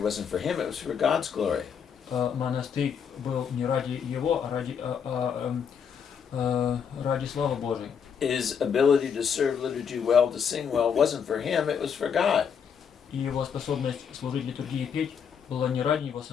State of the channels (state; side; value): quieter; right; 7.2 dB